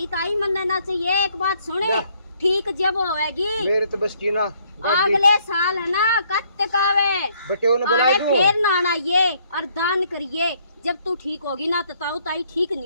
ताई मनने ना चाहिए। एक बात सुने क्या? ठीक जब होएगी मेरे तो बस की ना अगले साल है ना कत्त कावे बटे ने बुला अरे दूं। फिर ना आइए और दान करिए। जब तू ठीक होगी ना तो ताऊ ताई ठीक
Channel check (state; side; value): inverted; both; correlation -0.66